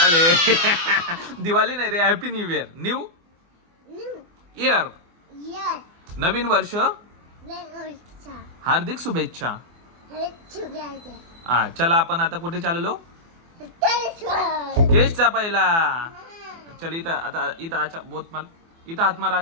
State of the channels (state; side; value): late; left; 24 ms